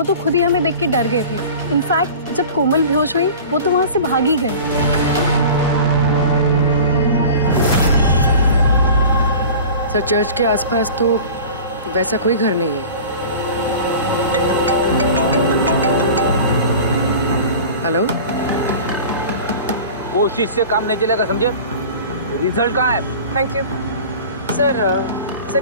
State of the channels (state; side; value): inverted; both; correlation -0.38